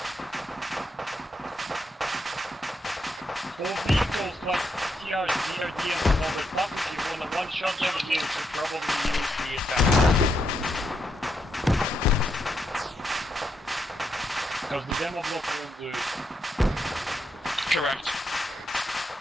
For vehicles like TRs, BRDM and all that stuff, if you wanna one-shot them, you should probably use the assembly. Because the demo block won't do it. Correct.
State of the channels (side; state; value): both; normal; correlation 0.80